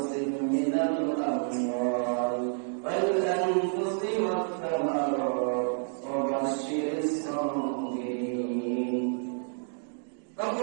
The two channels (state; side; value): silent; left; 58 dB below the other